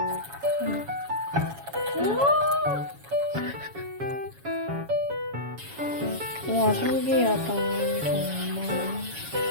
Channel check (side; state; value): left; late; 7.2 ms